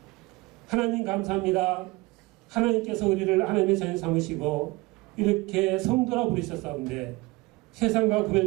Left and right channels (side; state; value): left; quieter; 22.8 dB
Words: 하나님 감사합니다. 하나님께서 우리를 하나님의 자녀 삼으시고 이렇게 성도라 부르셨사온데 세상과